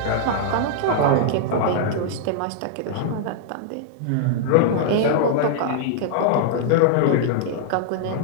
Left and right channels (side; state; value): both; different; correlation -0.01